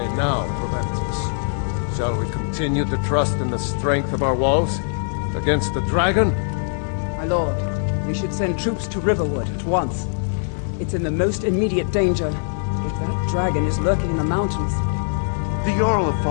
now, Proventus? Shall we continue to trust in the strength of our walls against the dragon? My lord, we should send troops to Riverwood at once. It's in the most immediate danger. If that dragon is lurking in the mountains... The Jarl of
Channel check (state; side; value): silent; right; 64 dB below the other